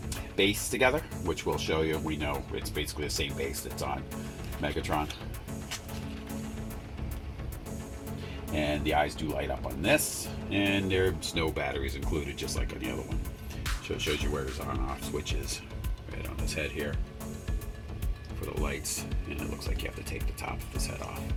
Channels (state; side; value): identical; both; correlation 1.00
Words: base together, which we'll show you. We know it's basically the same base that's on Megatron. And the eyes do light up on this, and there's no batteries included, just like on the other one. So it shows you where his on-off switch is, right on his head here for the lights, and it looks like you have to take the top of his head off